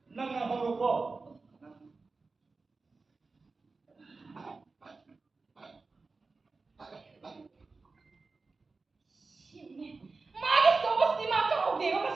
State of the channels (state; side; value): quieter; left; 3.9 dB